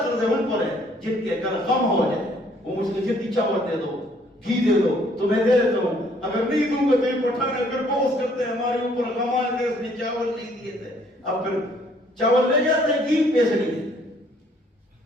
قرض ہے ان پر ہے جن کے اگر غم ہو جائے وہ مجھ سے جتنی چاول دے دو گھی دے دو تو میں دے دیتا ہوں، اگر نہیں دوں گا تو یہ پٹھان اگر بوس کرتے ہیں ہمارے اوپر، غم آئے تھے اس نے چاول نہیں دیے تھے، اب پھر چاول لے جاتے ہیں گھی پیسے نہیں دیتے۔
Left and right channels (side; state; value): both; normal; correlation 0.62